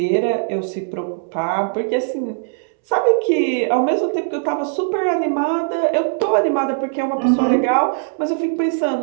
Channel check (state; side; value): silent; left; 66 dB below the other